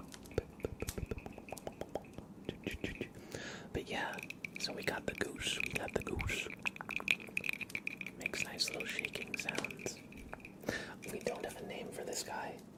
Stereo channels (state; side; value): identical; both; correlation 1.00